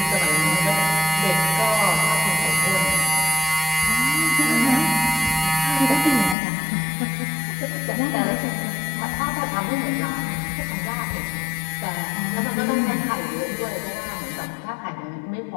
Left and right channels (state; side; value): drops out; right; at 6.4 s